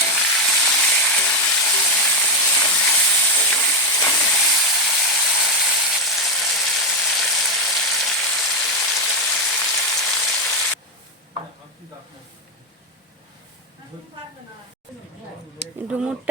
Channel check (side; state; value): both; normal; correlation 0.07